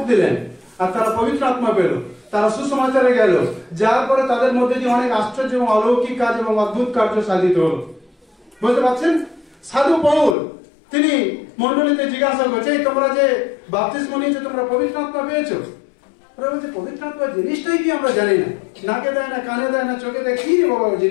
দিলেন আর তারা পবিত্র আত্মা পেল, তারা সুসমাচারে গেল, যার পরে তাদের মধ্যে দিয়ে অনেক আশ্চর্য এবং অলৌকিক কাজ এবং অদ্ভুত কার্য সাধিত হল। বুঝতে পারছেন? সাধু পৌল তিনি মন্ডলীতে জিজ্ঞাসা করছে, তোমরা যে বাপ্তিস্ম নিয়েছো, তোমরা পবিত্র আত্মা পেয়েছো? ওরা বলছে পবিত্র আত্মা জিনিসটাই কি আমরা জানি না, নাকে দেয় না, কানে দেয় না, চোখে দেয়, কি রে বাবা ওই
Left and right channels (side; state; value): right; drops out; at 10.4 s